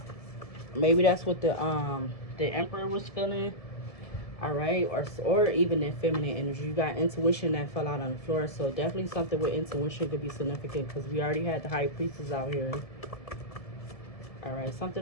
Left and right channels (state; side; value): late; right; 1.7 ms